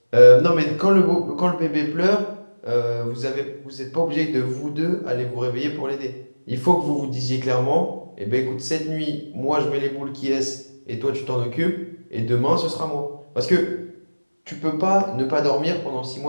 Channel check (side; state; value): both; inverted; correlation -1.00